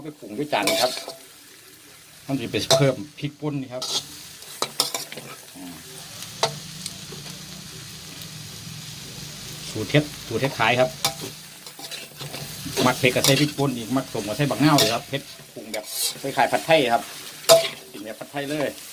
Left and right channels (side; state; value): both; identical; correlation 1.00